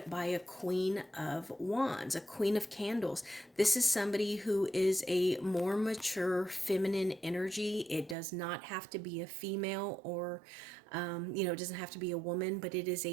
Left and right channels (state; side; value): drops out; left; at 8.2 s